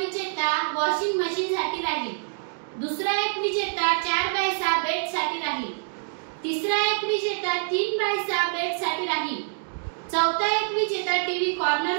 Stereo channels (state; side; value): silent; left; digital silence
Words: विजेता वॉशिंग मशीन साठी राहील. दुसरा एक विजेता 4x6 बेड साठी राहील. तिसरा एक विजेता 3x6 बेड साठी राहील. चौथा एक विजेता टीव्ही